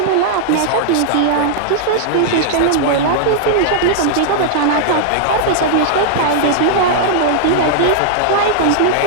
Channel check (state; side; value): different; both; correlation -0.01